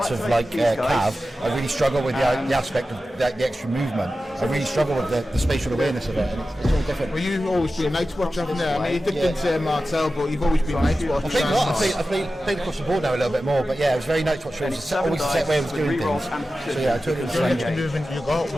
of like cav, I really struggle with the aspect of the extra movement. I really struggle with the spatial awareness of it, and it's all different. Well, you've always been Night's Watch, haven't you? I mean, you dipped into Martel, but you've always been Night's Watch. I played across the board now a little bit more, but yeah, it was very Night's Watch. It was always the same way I was doing things. So yeah, I took it The only extra movement you got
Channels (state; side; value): normal; both; correlation 0.94